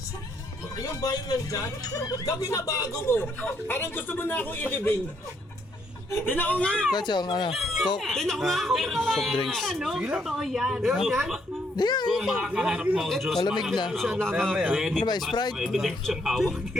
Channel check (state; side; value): normal; both; correlation 0.72